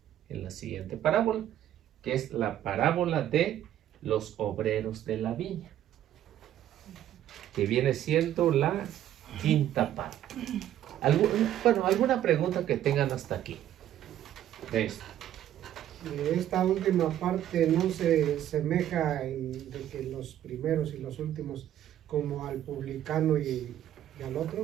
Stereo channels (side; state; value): left; quieter; 11.7 dB